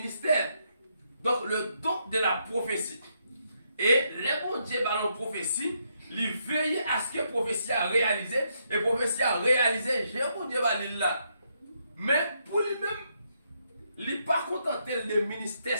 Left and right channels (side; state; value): both; inverted; correlation -0.76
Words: Donc, le don de la prophétie. Et les bons Dieu dans la prophétie, il veille à ce que la prophétie a réalisé. Et la prophétie a réalisé, j'ai un bon Dieu là. Mais pour lui-même, il n'est pas contenté de ministère